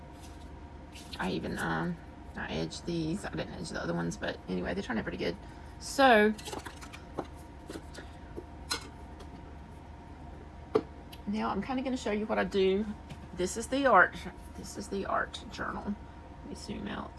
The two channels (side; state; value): both; identical; correlation 1.00